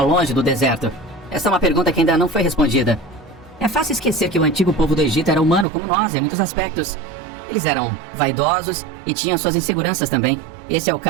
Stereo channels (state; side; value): drops out; left; at 5.7 s